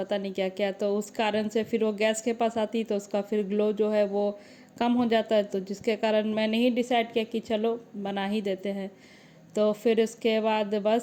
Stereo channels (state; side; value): identical; both; correlation 1.00